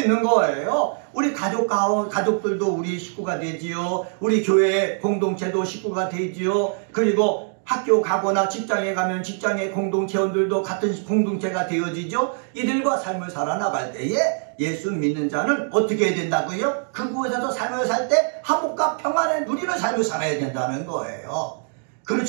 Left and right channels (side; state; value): left; silent; 57 dB below the other